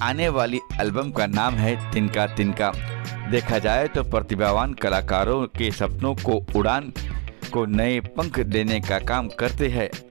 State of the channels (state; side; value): quieter; left; 32.6 dB